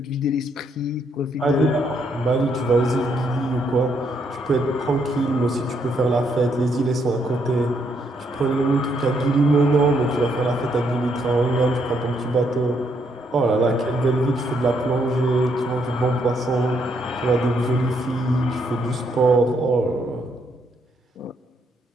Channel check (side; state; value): both; normal; correlation 0.74